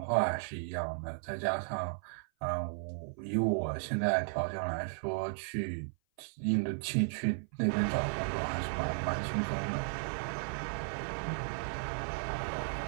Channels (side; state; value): left; silent; 54 dB below the other